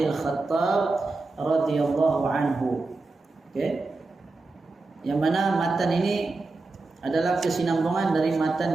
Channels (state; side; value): quieter; left; 3.5 dB